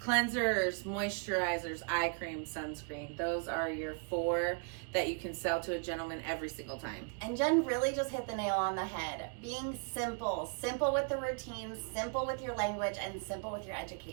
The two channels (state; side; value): quieter; left; 38.5 dB